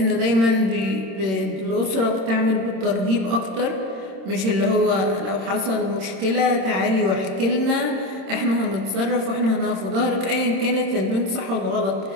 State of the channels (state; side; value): late; left; 26 ms